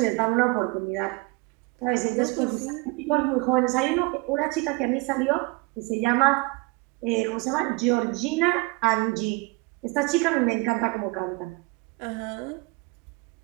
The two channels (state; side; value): quieter; left; 26.3 dB